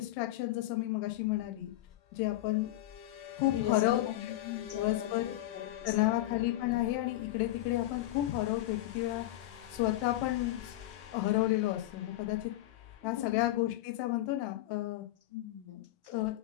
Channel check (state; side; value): quieter; right; 15.8 dB